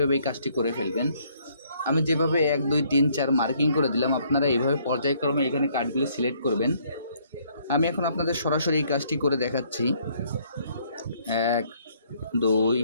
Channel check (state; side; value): inverted; both; correlation -0.65